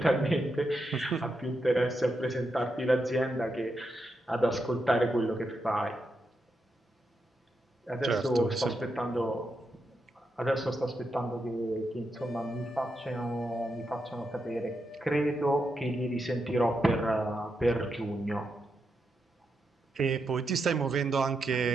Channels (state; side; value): normal; both; correlation 0.84